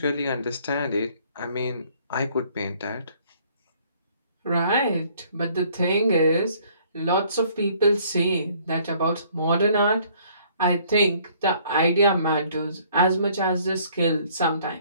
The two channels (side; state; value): both; inverted; correlation -0.60